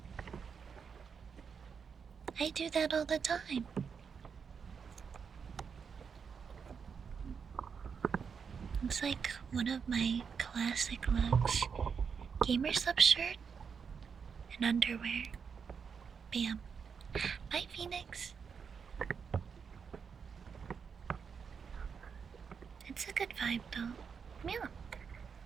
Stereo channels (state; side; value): quieter; left; 6.3 dB